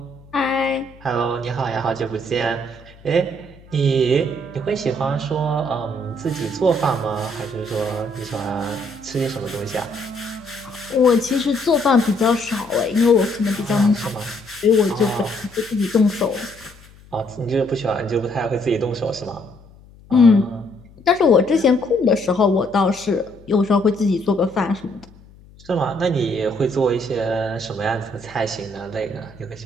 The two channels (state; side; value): noise; left; hum, 24 dB below the sound